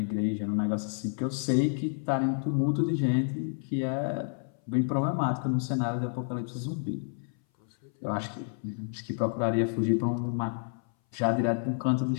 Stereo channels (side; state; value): right; silent; 58 dB below the other